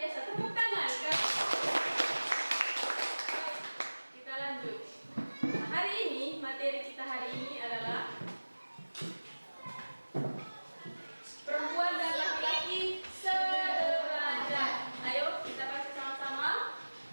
Tepuk tangan. Kita lanjut. Nah, hari ini, materi kita hari ini adalah perempuan dan laki-laki sederajat. Ayo kita baca sama-sama.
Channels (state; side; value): inverted; both; correlation -1.00